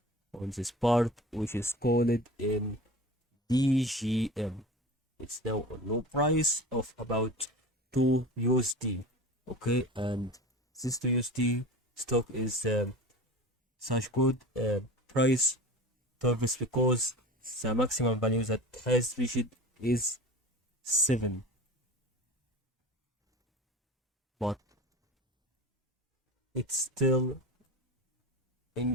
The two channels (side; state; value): both; normal; correlation 0.35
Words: on this part, which is called in DGM. It's now on low price of about 2 USD. Okay, and this 2 USD stock is such good price targets because the maximum value that has reached is 7, but it's still